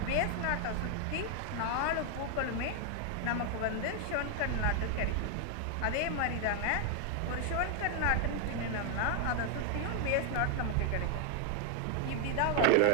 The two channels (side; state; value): both; different; correlation 0.00